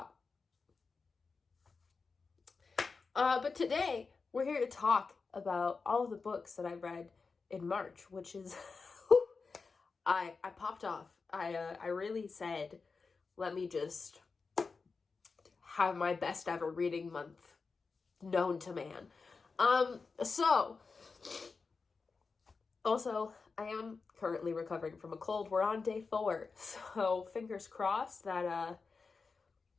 But today we're here to talk about all of the books that I read in March, which is I popped off. I really said, let me just have my best ever reading month known to man. So, also, I am currently recovering from a cold. We're on day 4, so fingers crossed that,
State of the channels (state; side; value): quieter; right; 4.6 dB